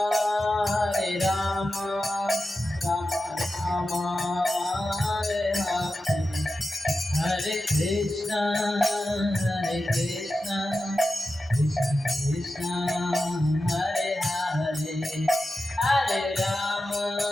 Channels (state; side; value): normal; both; correlation 0.92